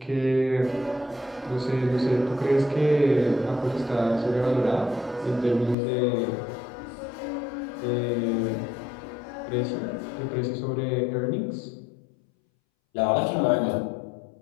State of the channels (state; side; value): drops out; right; at 5.8 s